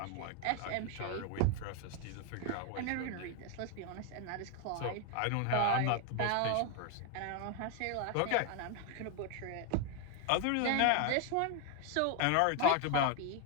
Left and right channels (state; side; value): different; both; correlation 0.00